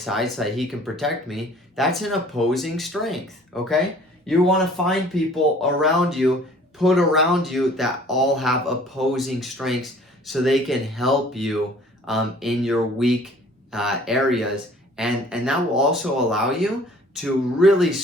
so that he can protect me. That's an opposing strength. Okay, you want to find people around you, put around you that all have opposing strengths, so they can help you in your weak areas, and that will also allow you to really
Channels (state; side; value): normal; both; correlation 0.52